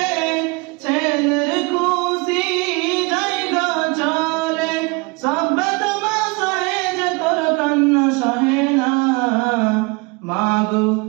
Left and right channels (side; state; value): left; quieter; 27.8 dB